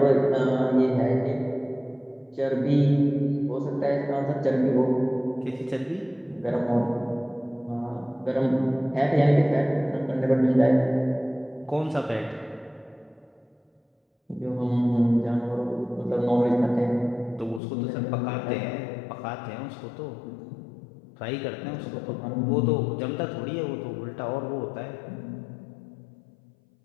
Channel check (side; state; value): right; drops out; at 17.6 s